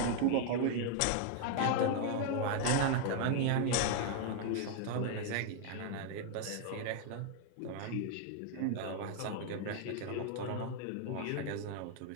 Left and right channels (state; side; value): different; both; correlation 0.00